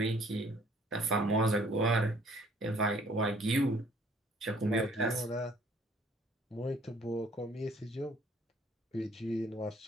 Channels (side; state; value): both; normal; correlation 0.59